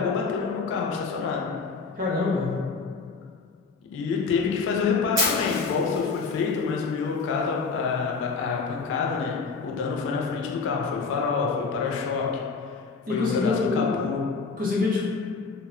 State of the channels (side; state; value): right; quieter; 4.7 dB